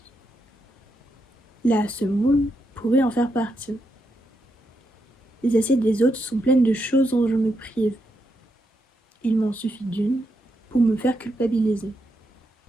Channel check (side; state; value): both; normal; correlation 0.82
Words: La semoule pourrait en faire partie. Les assiettes des autres sont pleines de choses dont je me prive. Il m'en suffit d'une pour me faire culpabiliser.